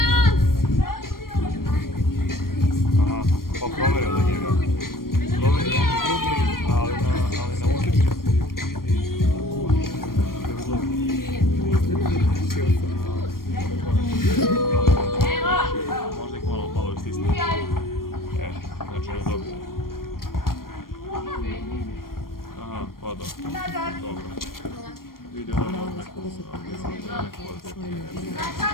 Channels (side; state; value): right; late; 0.92 ms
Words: Aha, pa provjerio da njega. Provjerio jedan drugi, ali na ulici. Možda ih malo istisne. Znači on je dobio. Aha, pa dobro. Dobro. Vidio da imamo neku